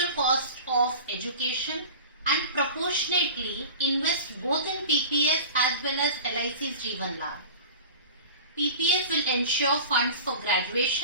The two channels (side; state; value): both; inverted; correlation -0.36